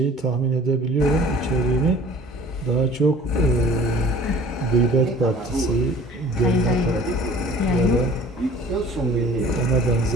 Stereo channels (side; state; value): both; normal; correlation 0.47